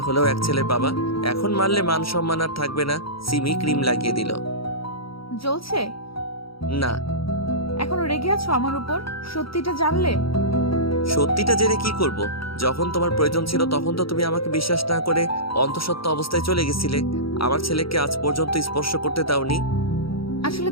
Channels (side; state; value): right; late; 0.75 ms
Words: হলেও এক ছেলের বাবা। এখন মারলে মান সম্মান আর থাকবে না। সিমি ক্রিম লাগিয়ে দিল। জ্বলছে? না। এখনো রেগে আছো আমার উপর? সত্যিটা জানলে? সত্যিটা জেনে কি করব? যখন তোমার প্রয়োজন ছিল তখন তো তুমি আমাকে বিশ্বাস না করে অন্তঃসত্ত্বা অবস্থায় চলে গেছিলে। আমার ছেলেকে আজ পর্যন্ত স্পর্শ করতে দাওনি। আসলে